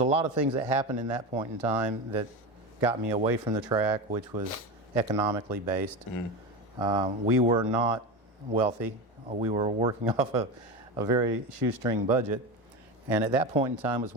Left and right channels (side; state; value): both; normal; correlation 0.22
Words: lot of things that happened in that point in time that got me away from the track, which was economically based. We were not wealthy. We were working off a very shoestring budget, and at that point in time was